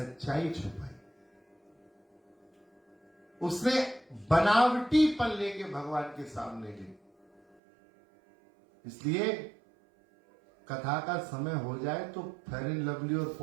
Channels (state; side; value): drops out; left; at 7.6 s